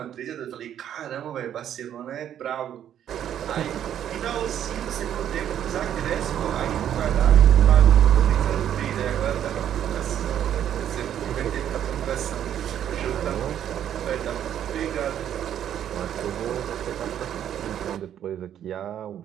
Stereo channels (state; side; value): quieter; left; 10.2 dB